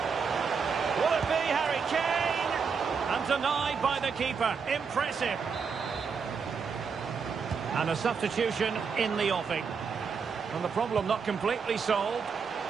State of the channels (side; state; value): left; quieter; 5.8 dB